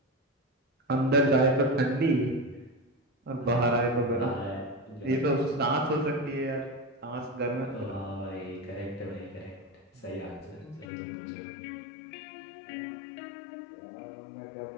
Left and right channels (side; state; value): right; drops out; at 10.9 s